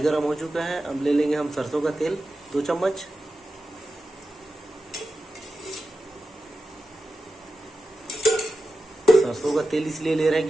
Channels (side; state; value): both; normal; correlation 0.91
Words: गर्म हो चुका है। अब ले लेंगे हम सरसों का तेल 2 चम्मच। सरसों का तेल इसलिए ले रहे हैं